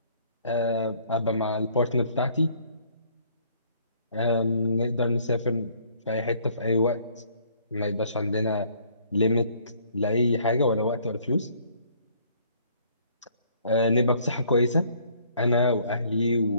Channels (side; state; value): both; inverted; correlation -0.61